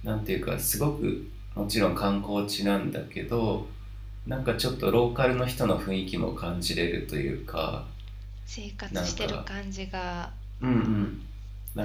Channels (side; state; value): both; identical; correlation 1.00